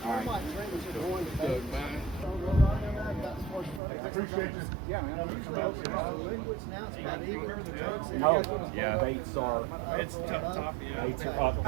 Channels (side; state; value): left; drops out; at 3.8 s